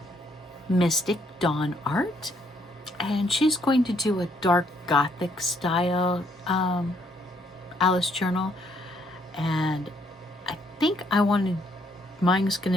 Mystic Dawn Art, and she's going to do a dark gothic style Alice journal, and I think mine's going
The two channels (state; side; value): normal; both; correlation 0.70